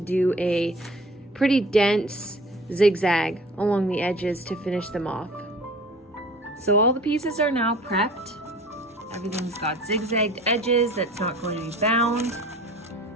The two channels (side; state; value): both; normal; correlation 0.45